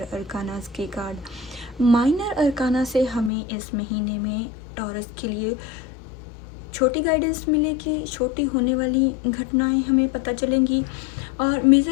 अरकानास के कार्ड। माइनर अरकाना से हमें इस महीने में टॉरस के लिए छोटी गाइडेंस मिलेगी, छोटी होने वाली घटनाएं हमें पता चलेंगी, और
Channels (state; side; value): drops out; right; at 3.3 s